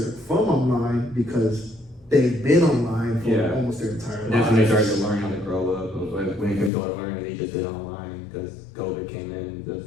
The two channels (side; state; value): right; drops out; at 6.7 s